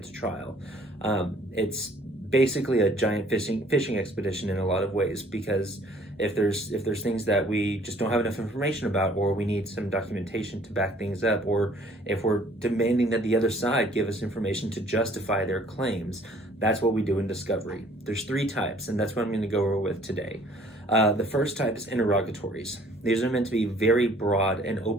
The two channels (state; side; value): normal; both; correlation 0.57